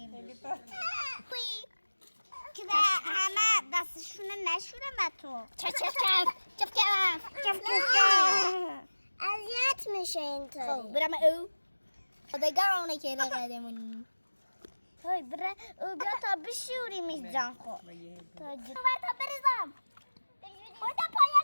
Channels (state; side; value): inverted; both; correlation -1.00